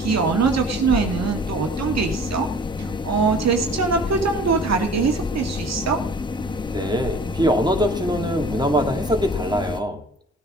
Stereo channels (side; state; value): both; normal; correlation 0.47